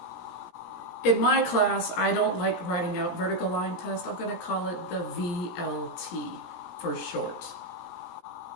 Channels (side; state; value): right; late; 17 ms